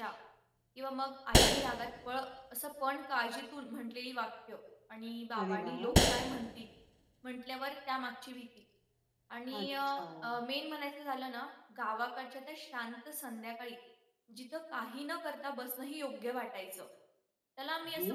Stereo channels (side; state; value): both; identical; correlation 1.00